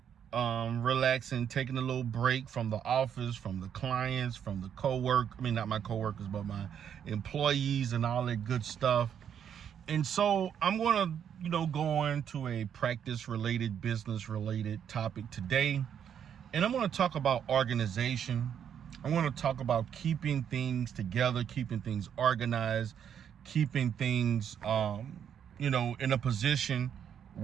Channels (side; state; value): left; quieter; 8.6 dB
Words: relaxing, taking a little break from the office, from the clients, from the not my coworkers, but my employees and all that good stuff. And so I'm gonna, go into a practice-related, business-related topic today. And I'm gonna talk about organization. I want to talk about keeping things together, keeping things organized, keeping things, in a position